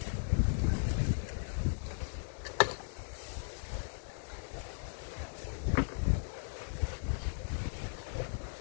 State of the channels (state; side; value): silent; right; 53 dB below the other